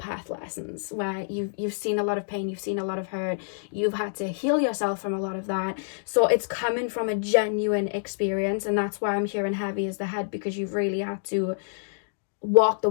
lessons where you've seen a lot of pain, you've seen a lot of hurt, you've had to heal yourself from a lot of that. So it's coming from a genuine experience, and that's why I'm hearing heavy as the head, because you've really had to walk the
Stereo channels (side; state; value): right; silent; digital silence